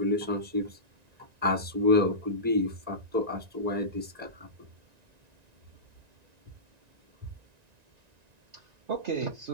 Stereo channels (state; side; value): late; left; 1.9 ms